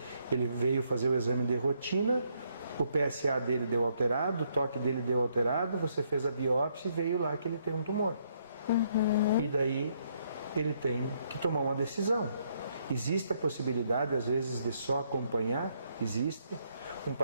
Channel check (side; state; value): both; inverted; correlation -0.72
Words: veio fazer o exame de rotina, o PSA dele deu alterado, o toque dele deu alterado, você fez a biópsia e veio lá que ele tem um tumor. E daí ele tem que tomar uma decisão. Existe a possibilidade, às vezes, de só acompanhar? Existe. Um